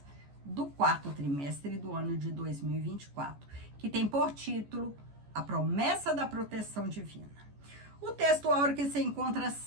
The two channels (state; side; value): late; left; 14 ms